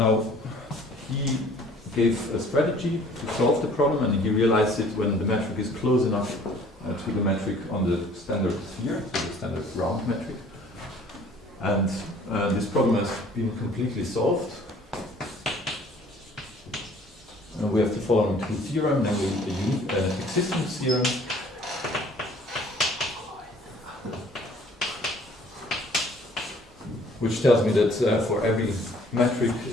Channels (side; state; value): both; normal; correlation 0.54